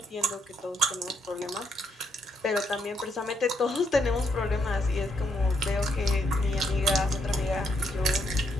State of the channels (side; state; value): both; normal; correlation 0.75